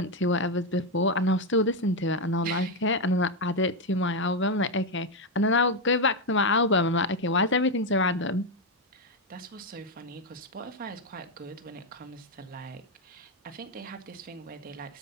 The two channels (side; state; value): both; normal; correlation 0.05